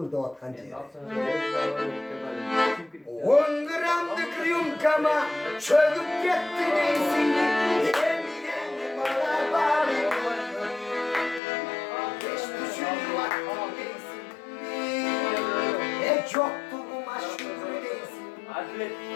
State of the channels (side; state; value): right; drops out; at 11.4 s